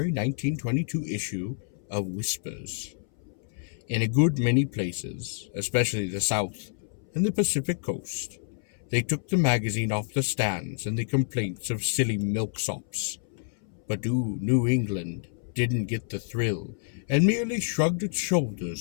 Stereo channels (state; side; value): silent; right; 59 dB below the other